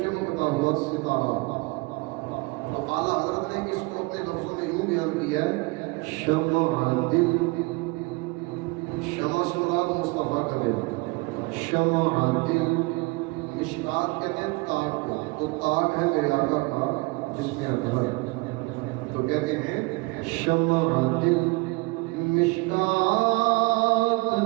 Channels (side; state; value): left; quieter; 25.6 dB